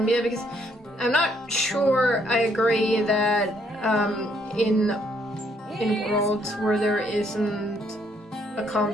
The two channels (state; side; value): normal; both; correlation 0.69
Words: Because I'm not sure I agree that in worlds where there isn't a